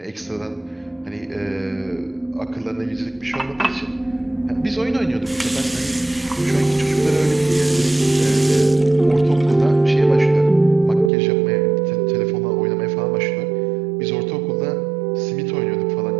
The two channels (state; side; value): drops out; left; at 11.1 s